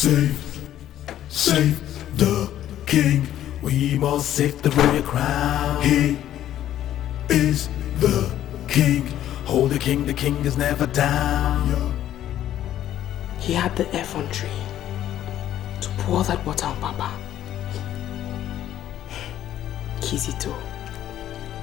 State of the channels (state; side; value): quieter; right; 12.0 dB